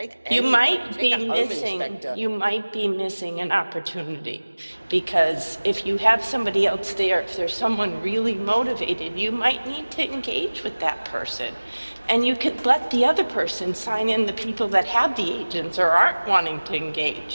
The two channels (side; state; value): both; inverted; correlation -1.00